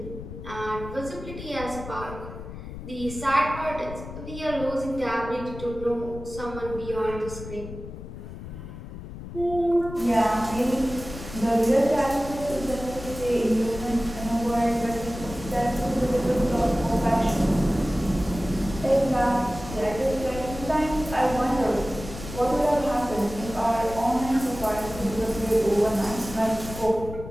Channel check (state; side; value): noise; left; rumble, 11 dB below the sound